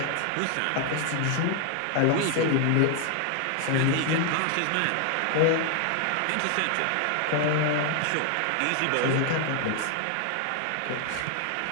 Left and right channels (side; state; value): both; different; correlation 0.00